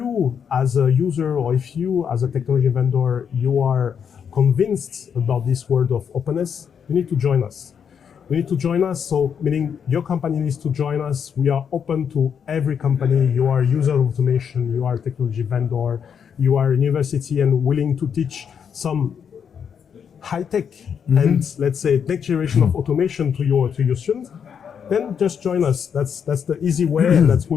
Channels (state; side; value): quieter; right; 7.4 dB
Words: as a user or if you as a technology vendor, you are convinced about this world of openness, you need to join us. You need to join us, so meaning your company needs to join us. We are open to every company. You are a user of automation, you are a technology vendor, you are a university and willing to teach some high-tech and let's say next generation of automation to your students, then just join us. That's the easy way, and that